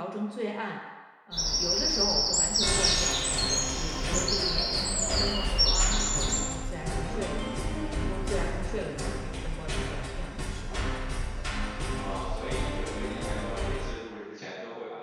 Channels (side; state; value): both; identical; correlation 1.00